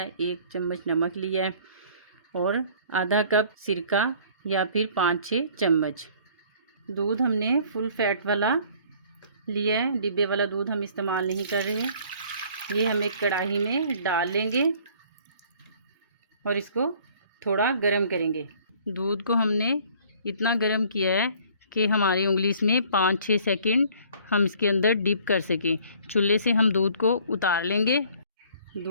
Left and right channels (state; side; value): inverted; both; correlation -0.55